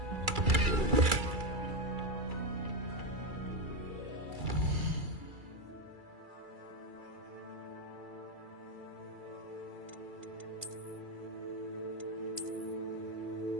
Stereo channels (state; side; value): late; left; 2.3 ms